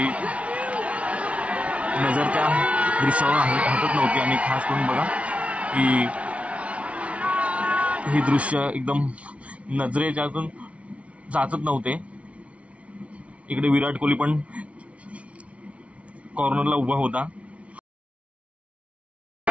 नजर त्या दृश्यावर हटत नव्हती. आणि खास करून बघा की हे दृश्य एकदम नजरेच्यातून जातच नव्हते. इकडे विराट कोहली पण कॉर्नरला उभा होता.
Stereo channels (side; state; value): left; late; 0.063 ms